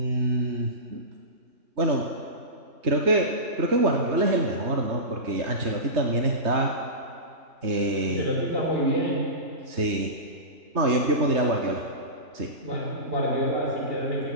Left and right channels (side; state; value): left; late; 3.2 ms